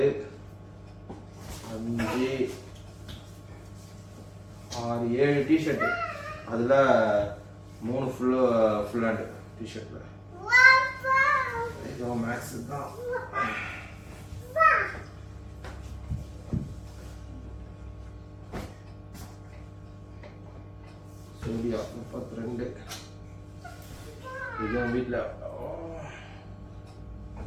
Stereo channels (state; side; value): identical; both; correlation 1.00